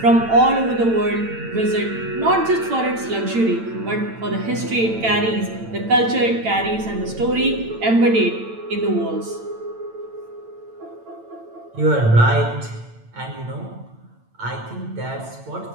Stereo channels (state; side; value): late; left; 8.9 ms